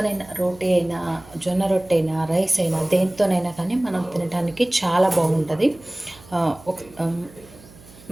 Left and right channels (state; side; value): noise; right; hum, 23 dB below the sound